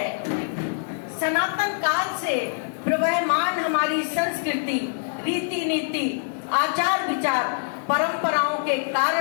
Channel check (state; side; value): silent; right; 60 dB below the other